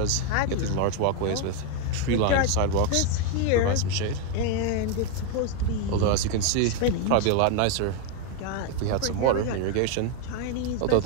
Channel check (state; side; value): different; both; correlation 0.01